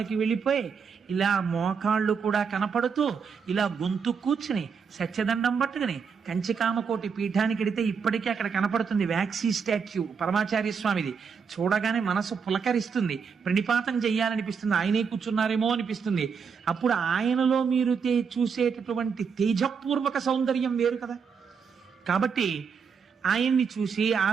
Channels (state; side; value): quieter; left; 6.1 dB